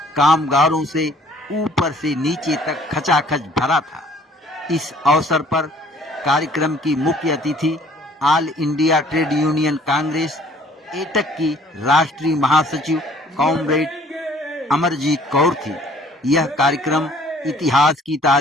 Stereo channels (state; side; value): normal; both; correlation 0.57